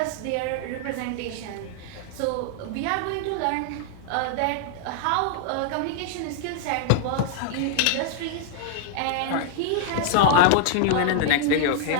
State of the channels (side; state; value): both; different; correlation -0.01